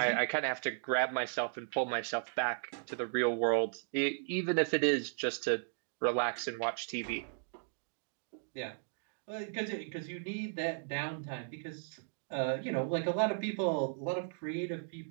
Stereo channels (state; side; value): silent; left; digital silence